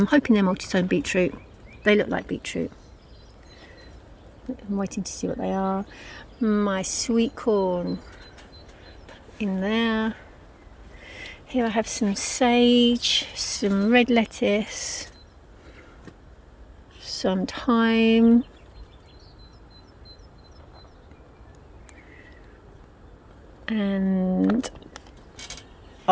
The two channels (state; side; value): identical; both; correlation 1.00